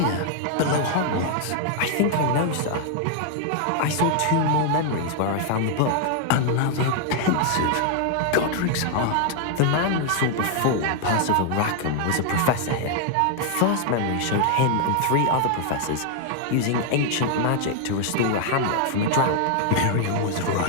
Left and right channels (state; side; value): different; both; correlation 0.00